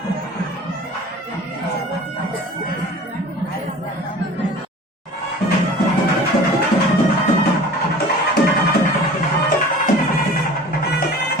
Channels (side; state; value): both; normal; correlation 0.42